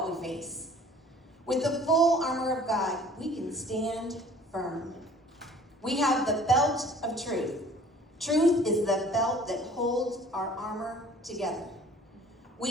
we face. With the full armor of God, we can stand firm. We have the belt of truth. Truth is the belt that holds our armor together.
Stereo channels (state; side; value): normal; both; correlation 0.50